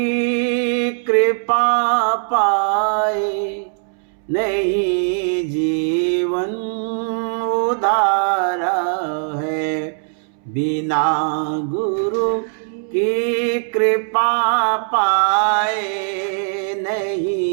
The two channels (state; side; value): silent; left; 66 dB below the other